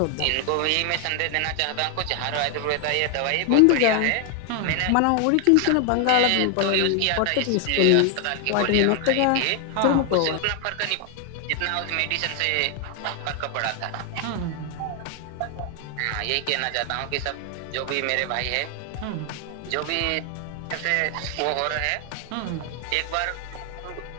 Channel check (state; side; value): different; both; correlation 0.00